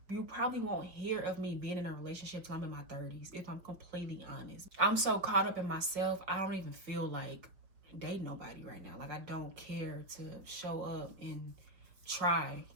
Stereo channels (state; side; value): late; left; 5.3 ms